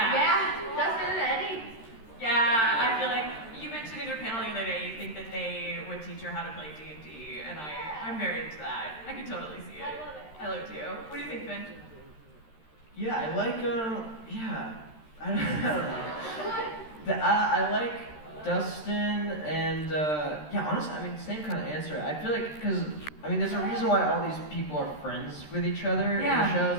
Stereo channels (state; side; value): late; right; 13 ms